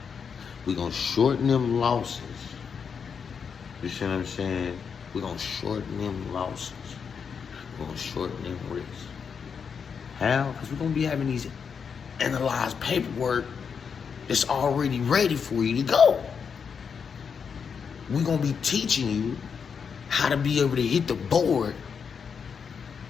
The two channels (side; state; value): right; quieter; 6.4 dB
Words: we're gonna shorten them losses. You see what I'm saying? We're gonna shorten them losses. We're gonna shorten them risks. How? Because we're gonna be having these analyzed paperwork that's already ready for you to go. We're gonna be teaching you how to be able to hit the board